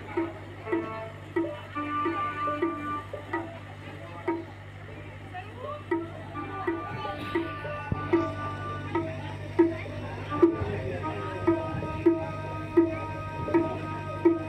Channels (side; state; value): both; identical; correlation 1.00